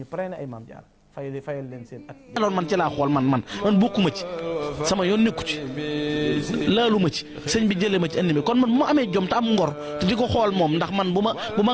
pare na ay maam jaara fayal leen seen at alors man ci laa xool man bokkuma ci sama yoon nekku ci laalu ma ci sëñ bi jëlee ma ci indi mi kon man bu ma amee jom te am ngor te di ko xool moom ndax man bu ma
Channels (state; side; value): identical; both; correlation 1.00